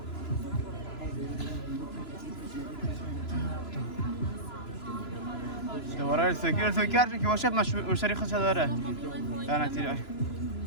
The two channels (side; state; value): right; late; 3.0 ms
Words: دوباره السوکی هر که باشه مشتری خودش داره لانتیر